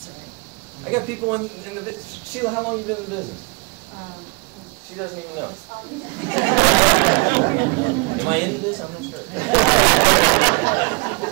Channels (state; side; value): quieter; left; 29.3 dB